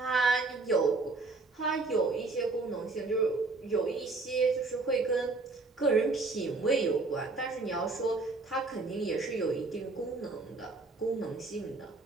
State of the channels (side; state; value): left; quieter; 3.6 dB